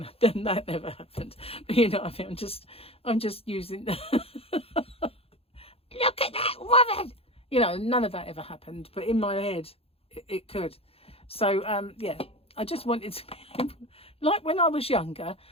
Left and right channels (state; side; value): late; right; 0.28 ms